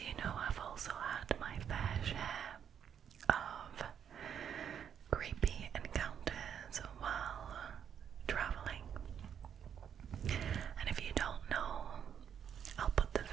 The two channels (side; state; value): left; quieter; 8.4 dB